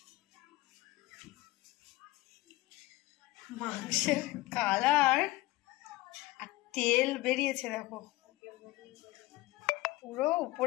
মাংসের কালার আর তেল বেরিয়েছে দেখো, পুরো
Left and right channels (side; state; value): right; quieter; 19.4 dB